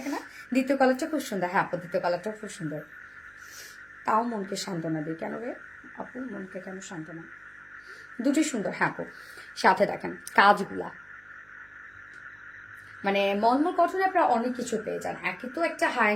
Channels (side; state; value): right; noise; hum, 30 dB below the sound